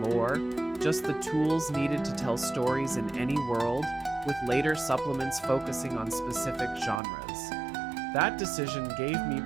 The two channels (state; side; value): drops out; left; at 7.0 s